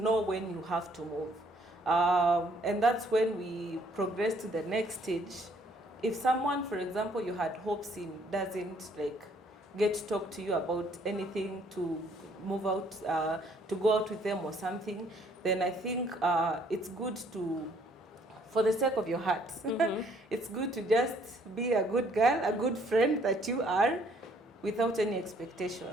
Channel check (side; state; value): both; normal; correlation 0.64